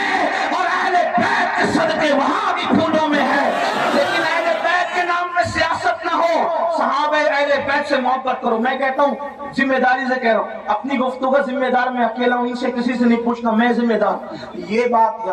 اور اہل بیت کے صدقے وہاں بھی پھولوں میں ہے. لیکن اہل بیت کے نام میں سیاست نہ ہو، صحابہ اہل بیت سے محبت کرو. میں کہتا ہوں ذمہ داری سے کہہ رہا ہوں، اپنی گفتگو کا ذمہ دار میں اکیلا ہوں، ان سے کسی سے نہیں پوچھنا، میں ذمہ دار. یہ بات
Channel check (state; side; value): identical; both; correlation 1.00